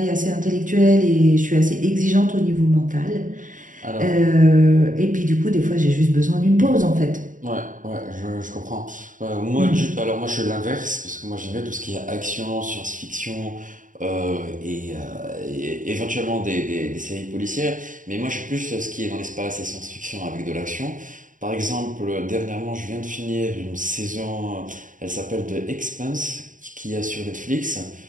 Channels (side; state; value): left; late; 0.38 ms